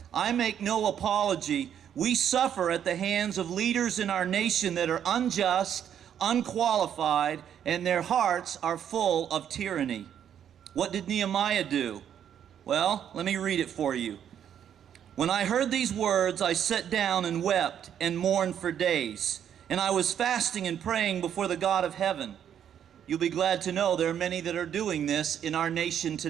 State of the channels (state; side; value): quieter; left; 9.3 dB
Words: I make no apology. We suffer at the hands of leaders in our nation that are unjust, unqualified, and their hearts are full of tyranny. What did Nehemiah do? Well, let me read it for you. When I heard these words, I sat down and wept and mourned for days, and I was fasting and praying before the God of heaven. You'll be glad to know there are many that are doing this in our nation